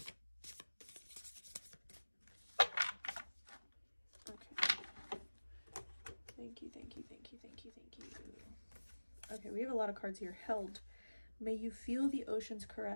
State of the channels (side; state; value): both; inverted; correlation -1.00